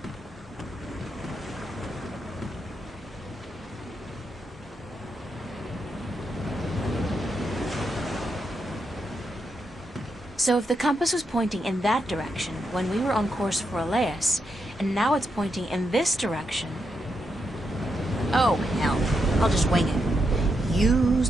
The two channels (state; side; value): normal; both; correlation 0.82